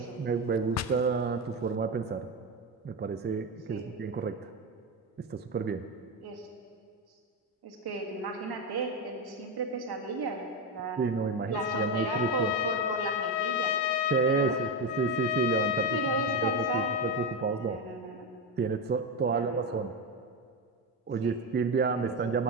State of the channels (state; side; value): normal; both; correlation 0.12